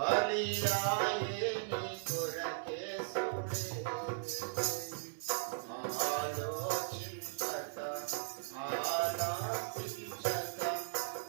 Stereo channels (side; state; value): left; silent; digital silence